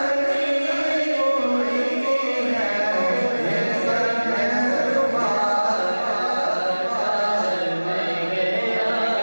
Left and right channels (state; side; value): inverted; both; correlation -1.00